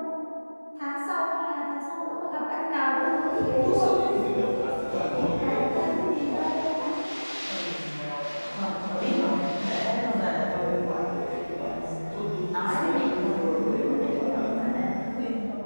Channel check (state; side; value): inverted; both; correlation -1.00